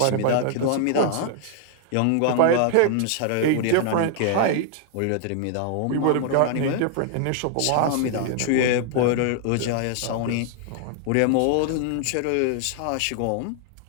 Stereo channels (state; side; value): different; both; correlation 0.00